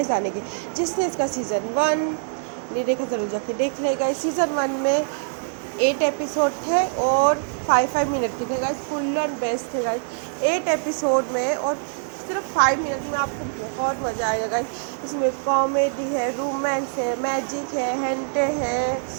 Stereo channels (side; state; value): left; silent; digital silence